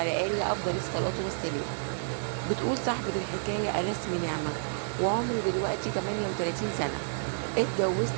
آله أفضل الصلاة والسلام. بتقول صاحبة الحكاية: أنا اسمي نعمة وعمري دلوقتي 38 سنة. اتجوزت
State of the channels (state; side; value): silent; left; 58 dB below the other